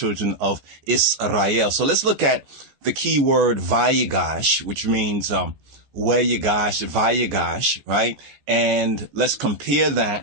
of Israel? So let's look at the key word Vayigash, which means Vayigash, right? And let's compare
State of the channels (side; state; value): left; late; 14 ms